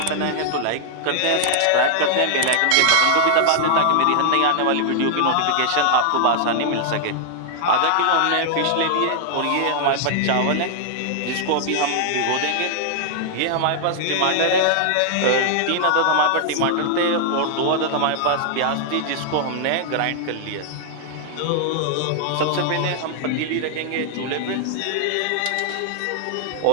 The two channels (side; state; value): both; different; correlation 0.00